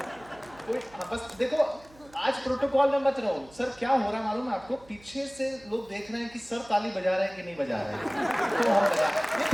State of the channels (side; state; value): right; noise; hum, 25 dB below the sound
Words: कोई बस देखो, आज प्रोटोकॉल में मत रहो। सर क्या हो रहा है मालूम है आपको? पीछे से लोग देख रहे हैं कि सर ताली बजा रहे हैं कि नहीं बजा रहे हैं, तो हम बजा। ये